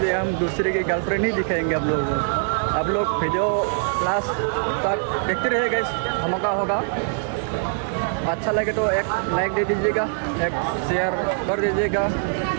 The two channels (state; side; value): silent; left; 63 dB below the other